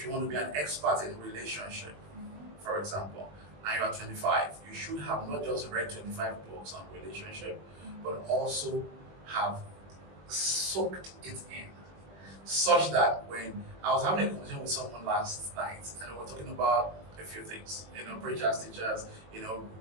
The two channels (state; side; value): late; left; 20 ms